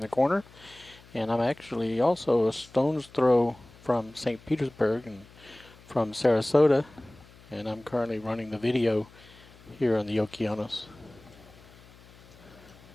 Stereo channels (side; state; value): left; noise; hum, 24 dB below the sound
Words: corner. And I'm actually also a stone's throw from St. Petersburg and from Sarasota. And I'm currently running the video here on the Okeanos.